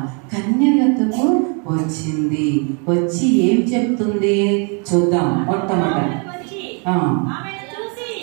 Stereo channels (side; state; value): left; quieter; 36.4 dB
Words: కన్య యొద్దకు వచ్చింది. వచ్చి ఏం చెప్తుంది చూద్దాం. మొట్టమొదటి